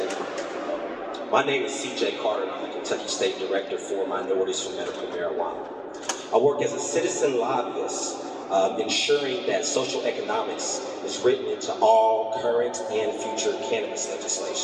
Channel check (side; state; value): both; identical; correlation 1.00